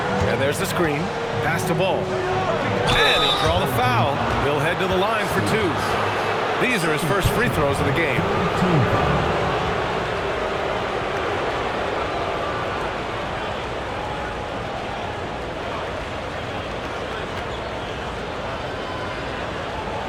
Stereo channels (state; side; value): identical; both; correlation 1.00